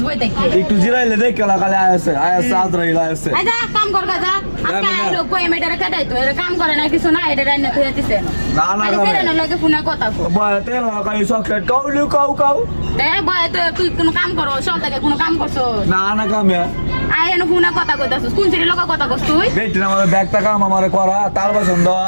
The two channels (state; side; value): inverted; both; correlation -1.00